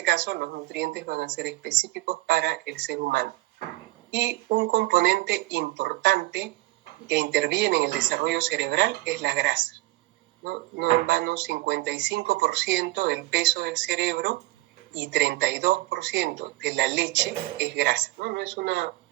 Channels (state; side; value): quieter; left; 19.7 dB